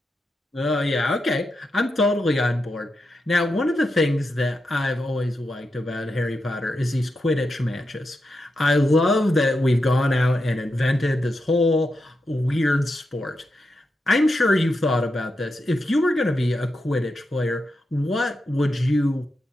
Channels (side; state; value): both; normal; correlation 0.86